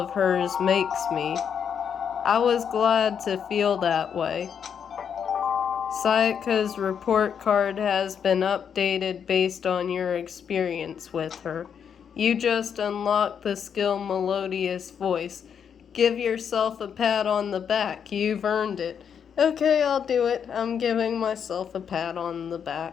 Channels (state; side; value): quieter; right; 7.6 dB